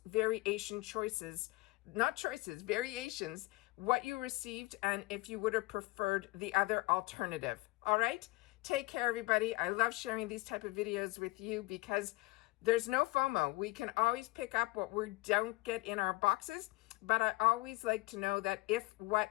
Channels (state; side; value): quieter; right; 22.1 dB